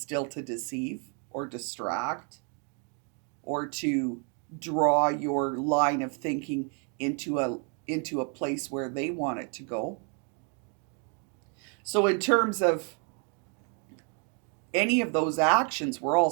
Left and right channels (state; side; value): quieter; left; 38.8 dB